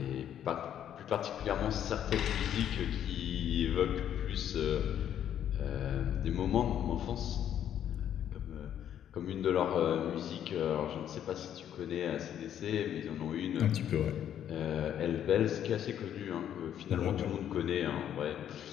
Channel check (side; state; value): right; quieter; 10.1 dB